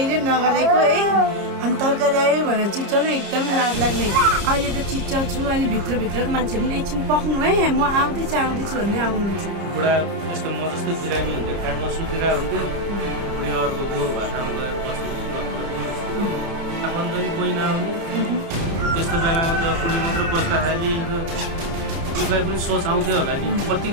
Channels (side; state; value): left; late; 30 ms